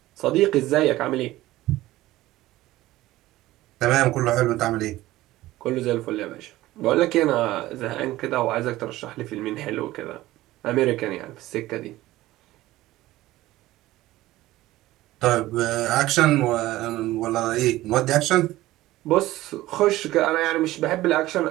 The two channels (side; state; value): left; quieter; 16.6 dB